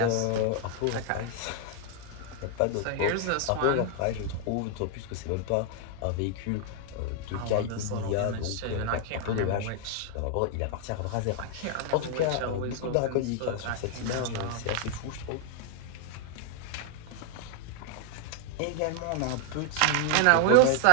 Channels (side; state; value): both; different; correlation 0.00